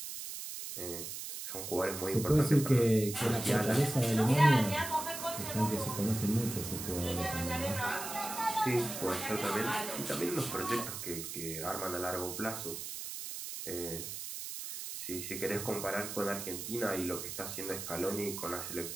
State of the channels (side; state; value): right; noise; hiss, 7 dB below the sound